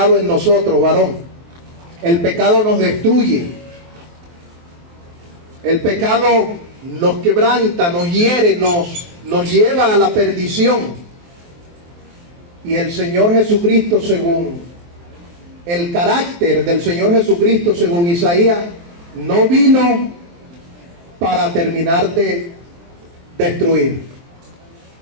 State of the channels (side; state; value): left; late; 23 ms